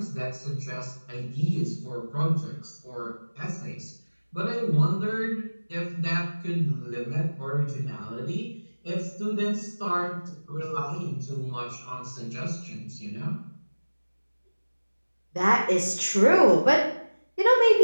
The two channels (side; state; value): both; inverted; correlation -1.00